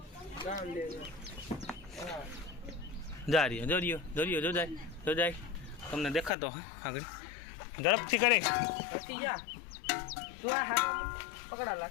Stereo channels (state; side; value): drops out; right; at 6.3 s